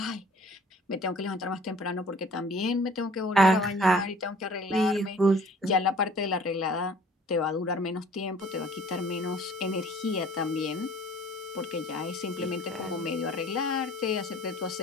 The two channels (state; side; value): normal; both; correlation 0.51